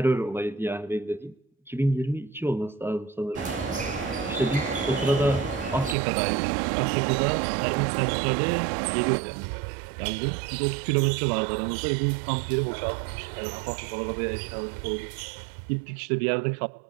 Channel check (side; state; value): left; drops out; at 6.0 s